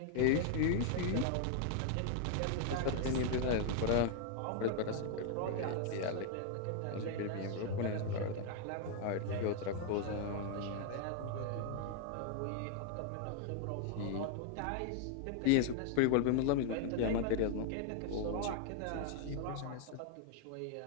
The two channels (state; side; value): different; both; correlation 0.00